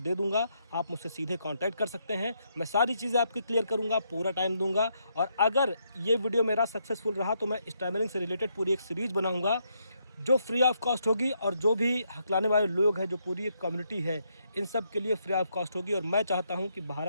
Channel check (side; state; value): both; inverted; correlation -0.77